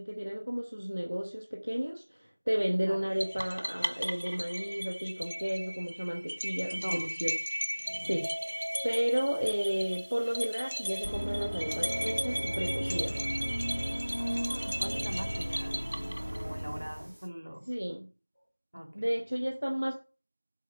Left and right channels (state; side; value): inverted; both; correlation -1.00